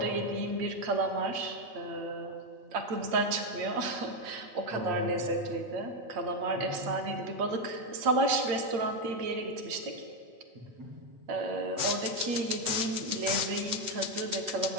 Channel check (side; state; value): left; late; 8.7 ms